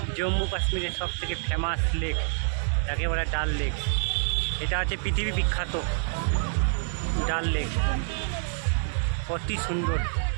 জম্মু কাশ্মীরের সবথেকে ফেমাস লেক, যাকে বলে ডাল লেক। এটা হচ্ছে পৃথিবী বিখ্যাত ডাল লেক। অতি সুন্দর,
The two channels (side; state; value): left; silent; digital silence